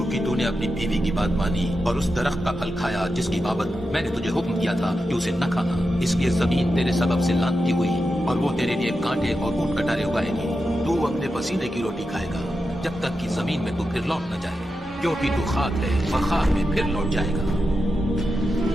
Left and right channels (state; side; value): normal; both; correlation 0.89